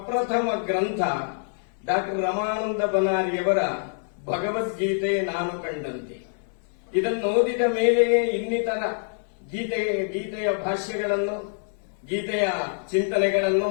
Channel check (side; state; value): right; silent; digital silence